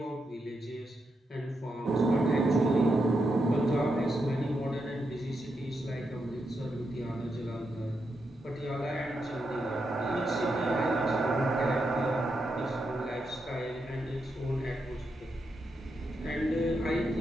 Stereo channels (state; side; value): normal; both; correlation 0.84